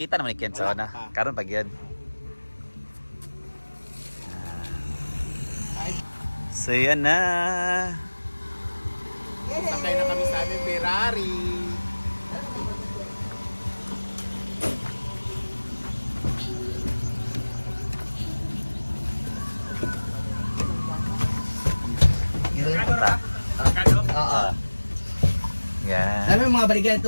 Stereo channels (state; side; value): inverted; both; correlation -1.00